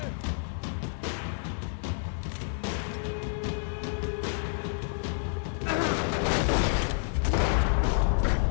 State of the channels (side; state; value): right; silent; digital silence